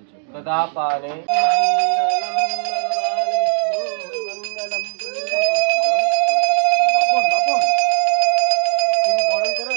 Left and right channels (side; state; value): left; silent; digital silence